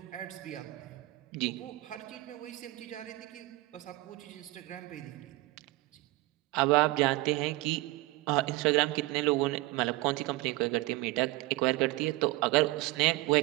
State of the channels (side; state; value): left; quieter; 20.1 dB